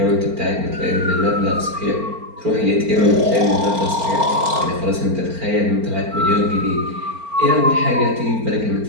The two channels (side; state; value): left; late; 4.4 ms